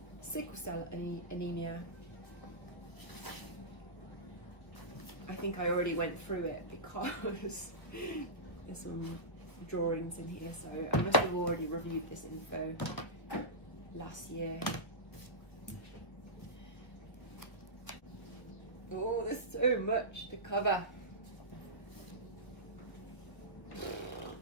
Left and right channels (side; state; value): right; late; 1.1 ms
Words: sickle cell anemia, I think I already went through it because there's some drawings in here, so I must have already reviewed this info last year. Oh, there's so much to cover.